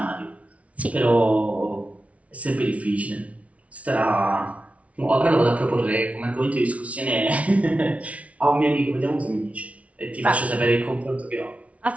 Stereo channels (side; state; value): left; late; 0.065 ms